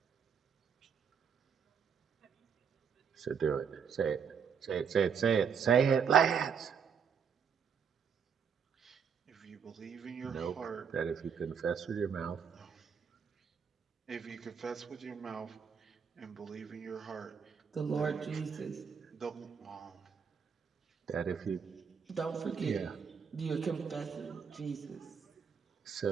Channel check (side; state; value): left; quieter; 6.8 dB